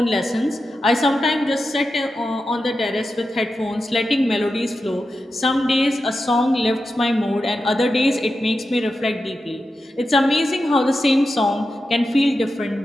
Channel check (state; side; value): normal; both; correlation 0.90